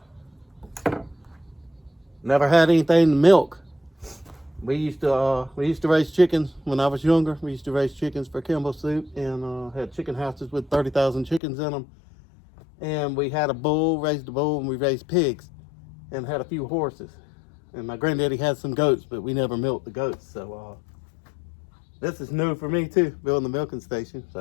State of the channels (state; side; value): drops out; right; at 11.4 s